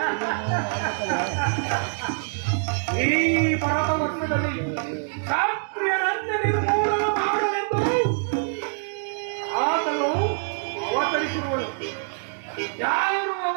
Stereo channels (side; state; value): left; silent; 62 dB below the other